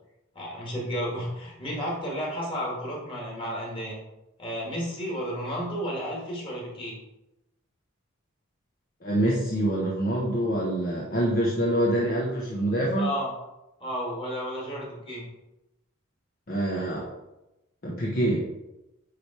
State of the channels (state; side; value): normal; both; correlation 0.48